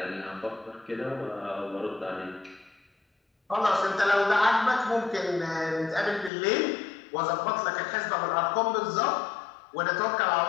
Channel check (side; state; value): right; drops out; at 6.3 s